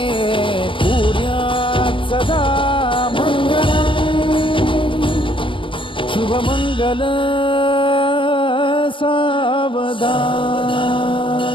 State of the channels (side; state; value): right; late; 0.25 ms